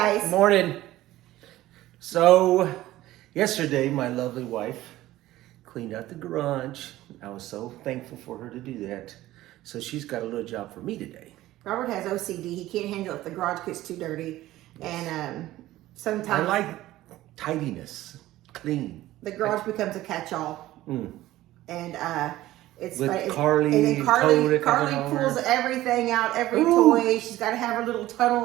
Morning. So, yesterday, my lovely wife cleaned out the garage. I was so thankful for her to do that. So she's got a little job for me today. Robert has OCD. He can't handle it if the garage gets too dirty. And sometimes... I like tidiness, clean. The garage becomes a catch-all. And it's... With Carly pulls everything out, every toy. She's got to have her little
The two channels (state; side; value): quieter; left; 15.7 dB